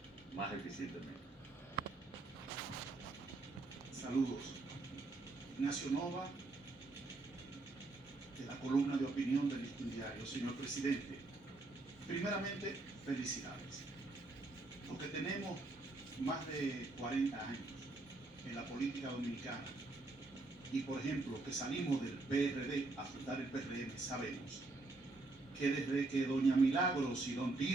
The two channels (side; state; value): left; quieter; 3.2 dB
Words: más eficientemente. Saludos. Ignacio Nova, de la columna de opinión del Listín Diario. Señor presidente, primeramente, felicidades. Los que tenemos más de 40 años en la política dominicana y, por ejemplo, que salimos del PRD a fundar el PRM, sabemos que desde que doña Milagros y don